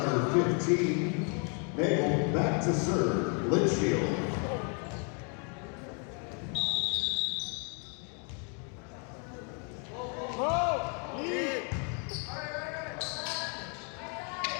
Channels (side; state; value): right; quieter; 38.5 dB